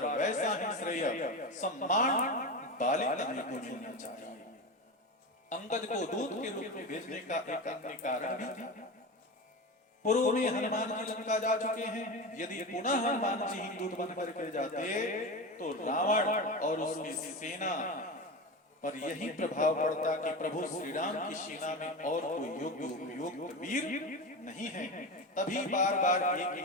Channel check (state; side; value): normal; both; correlation 0.23